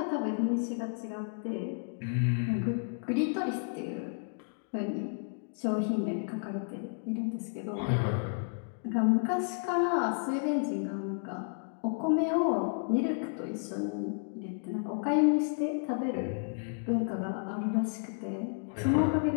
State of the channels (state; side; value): silent; right; digital silence